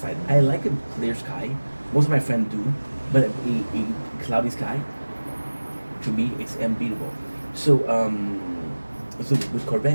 I like a clear sky. Most of my friends do, but a cloudy sky, to me, it's unbeatable. So, so with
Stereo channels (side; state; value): both; inverted; correlation -1.00